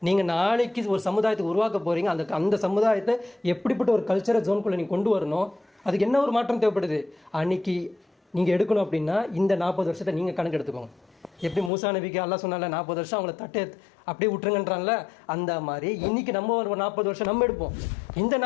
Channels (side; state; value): right; drops out; at 11.7 s